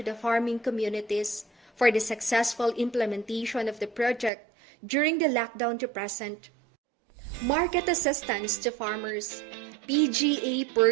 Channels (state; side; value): drops out; left; at 4.3 s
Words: the farming communities for the successful implementation of the project during the lockdown to present. Market assistance to farmers. PGA